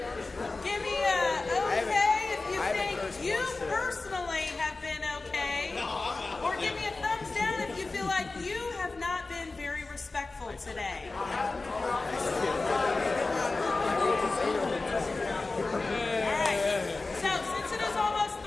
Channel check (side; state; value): right; quieter; 3.5 dB